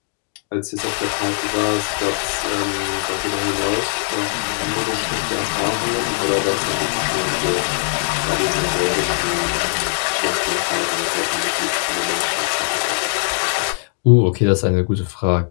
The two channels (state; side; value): silent; right; digital silence